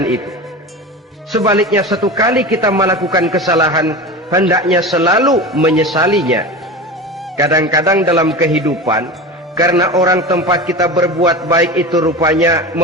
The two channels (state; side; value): normal; both; correlation 0.29